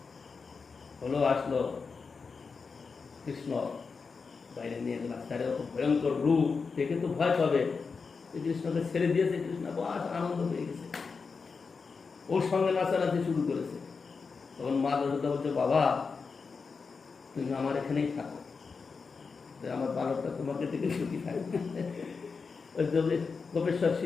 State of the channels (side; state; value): right; quieter; 5.0 dB